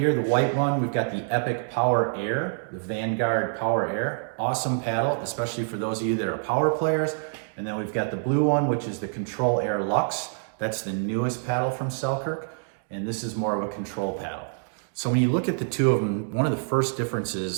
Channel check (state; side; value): silent; left; digital silence